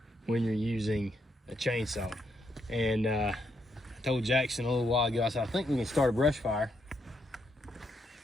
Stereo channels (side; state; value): both; normal; correlation 0.77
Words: when you're using a chainsaw. And I told Jackson a little while ago, I said, I think we can start a brush fire,